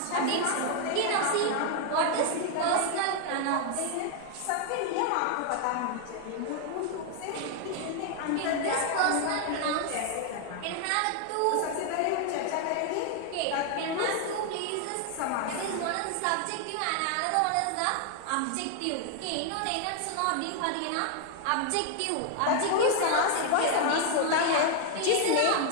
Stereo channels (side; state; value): both; different; correlation 0.00